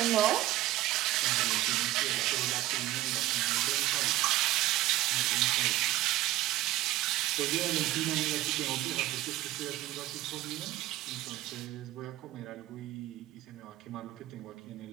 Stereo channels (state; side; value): quieter; left; 16.1 dB